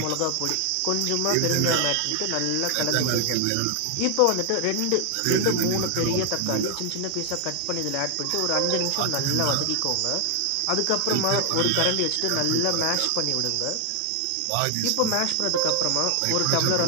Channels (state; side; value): different; both; correlation 0.00